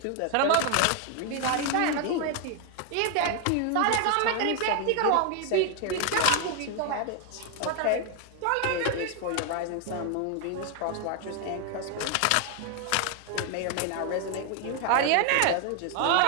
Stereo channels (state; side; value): different; both; correlation 0.00